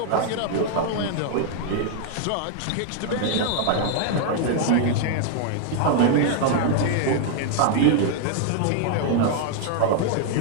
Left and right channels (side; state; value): both; different; correlation 0.00